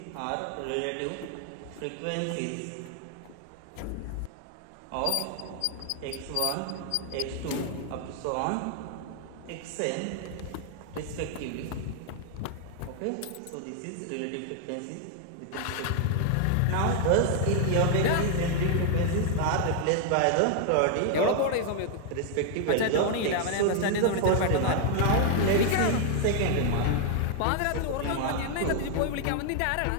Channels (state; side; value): different; both; correlation 0.00